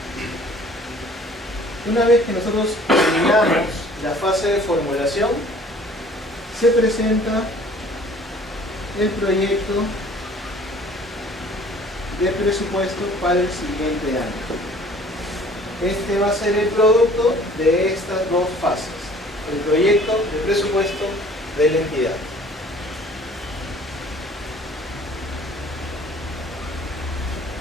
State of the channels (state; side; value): normal; both; correlation 0.52